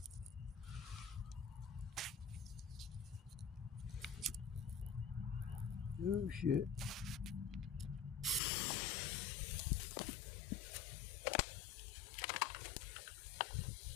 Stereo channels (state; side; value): drops out; right; at 8.4 s